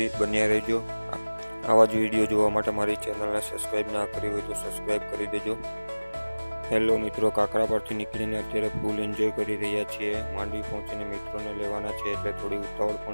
બન્યા રહેજો। આવા જ વિડીયો જોવા માટે મારી ચેનલને સબસ્ક્રાઈબ ના કરી હોય તો સબસ્ક્રાઈબ કરી દેજો। હેલો મિત્રો, કાકરા પરથી નીકળીને અત્યારે ફૂલ એન્જોય કરી રહ્યા છીએ। માંડવી પહોંચીને મિત્રોને લેવાના છે એટલે થોડી ઉતાવળ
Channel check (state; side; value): inverted; both; correlation -1.00